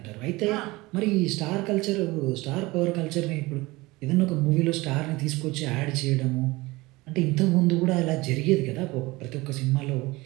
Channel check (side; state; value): left; quieter; 21.4 dB